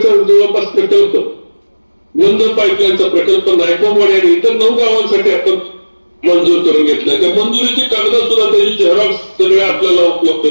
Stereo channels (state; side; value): inverted; both; correlation -1.00